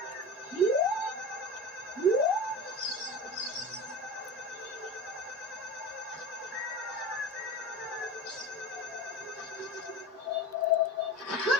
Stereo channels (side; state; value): both; normal; correlation 0.29